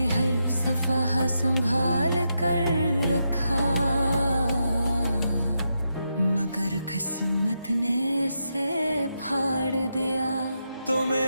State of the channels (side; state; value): both; inverted; correlation -0.84